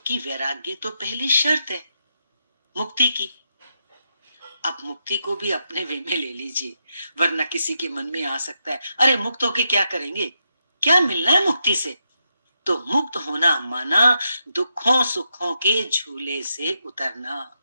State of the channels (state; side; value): inverted; both; correlation -0.83